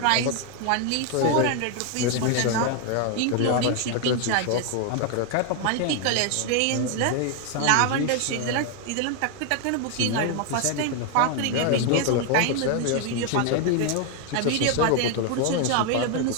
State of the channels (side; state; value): both; different; correlation 0.01